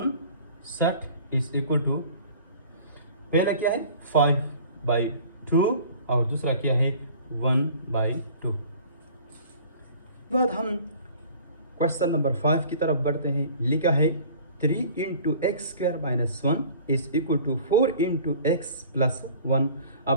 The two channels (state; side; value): inverted; both; correlation -0.47